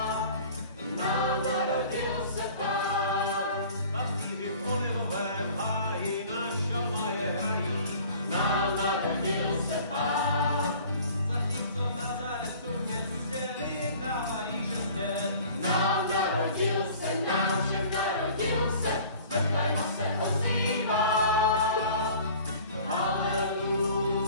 Nám narodil se Pán. Pastýři v olivovém háji na šalaje hrají. Nám narodil se Pán. Zatímco v Nazaretu městě vyhrávají žezně. Nám narodil se, nám všem narodil se, z Betléma se ozývá.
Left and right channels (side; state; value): both; inverted; correlation -0.47